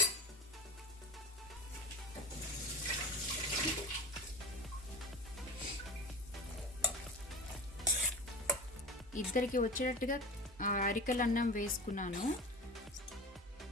ఇద్దరికి వచ్చేటట్టుగా అరికెల అన్నం వేసుకున్నాను.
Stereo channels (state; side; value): normal; both; correlation 0.31